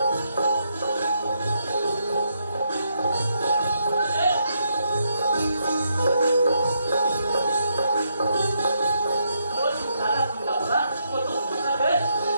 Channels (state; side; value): inverted; both; correlation -0.78